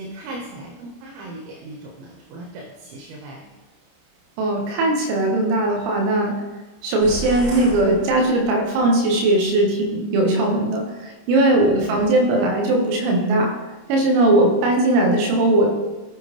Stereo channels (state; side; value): late; left; 29 ms